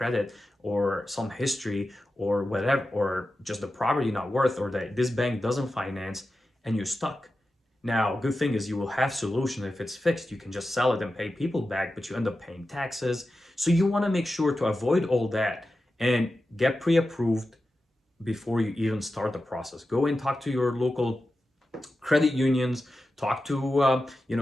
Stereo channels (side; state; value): both; normal; correlation 0.92